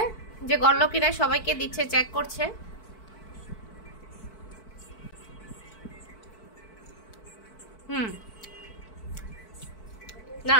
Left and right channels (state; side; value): late; right; 4.6 ms